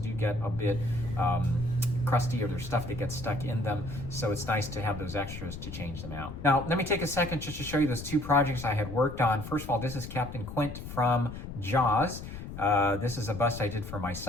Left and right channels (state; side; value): noise; left; rumble, 10 dB below the sound